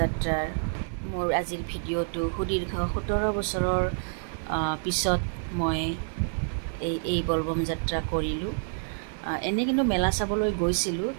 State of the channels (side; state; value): left; silent; digital silence